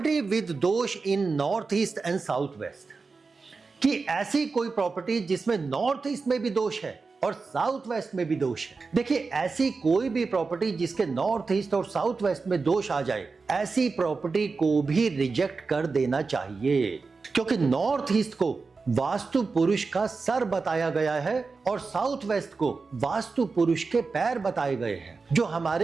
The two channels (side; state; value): left; quieter; 4.4 dB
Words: विद दोष in north east and south west, कि ऐसी कोई प्रॉपर्टी जिसमें नॉर्थ ईस्ट में भी दोष है और साउथ वेस्ट में भी दोष है। देखिए, ऐसी कोई भी प्रॉपर्टी जिसके नॉर्थ ईस्ट और साउथ वेस्ट में दोष आ जाए, ऐसी प्रॉपर्टी को भी रिजेक्ट कर देना चाहिए, क्योंकि नॉर्थ ईस्ट को वास्तु पुरुष का सर बताया गया है और साउथ वेस्ट को वास्तु पुरुष के पैर बताए गए हैं, जो